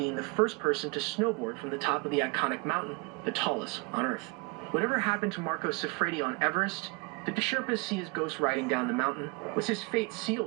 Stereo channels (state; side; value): quieter; left; 28.7 dB